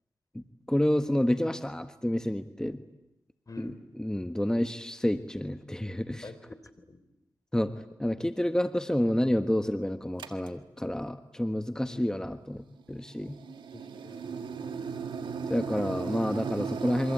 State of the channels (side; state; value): both; normal; correlation 0.97